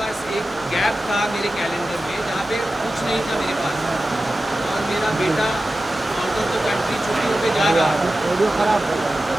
एक गैप था मेरे कैलेंडर में जहाँ पे कुछ नहीं था मेरे पास। और मेरा बेटा आउट ऑफ द कंट्री छुट्टियों पे जा रहा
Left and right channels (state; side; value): normal; both; correlation 0.94